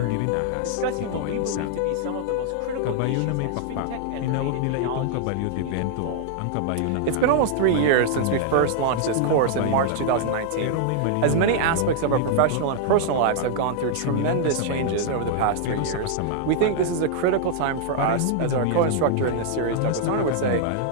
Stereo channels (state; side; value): different; both; correlation -0.01